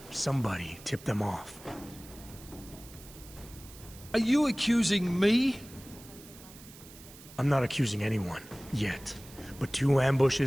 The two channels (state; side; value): noise; right; hiss, 19 dB below the sound